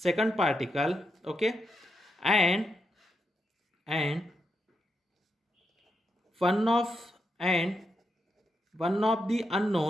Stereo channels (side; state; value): both; normal; correlation 0.83